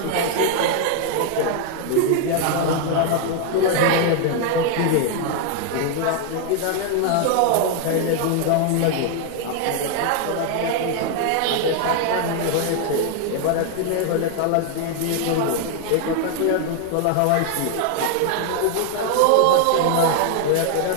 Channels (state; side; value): different; both; correlation 0.00